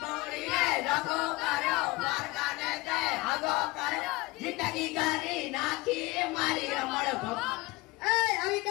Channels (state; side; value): quieter; right; 22.2 dB